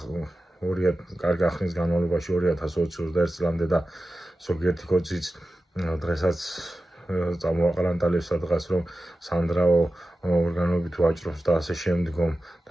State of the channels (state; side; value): normal; both; correlation 0.94